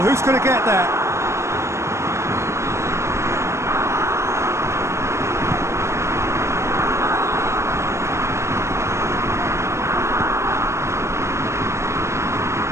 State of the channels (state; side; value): late; left; 0.13 ms